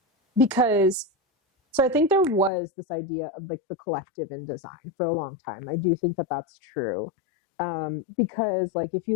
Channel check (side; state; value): right; drops out; at 2.5 s